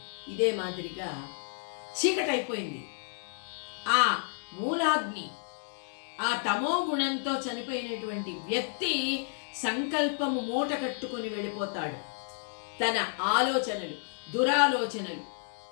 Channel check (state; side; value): silent; right; 57 dB below the other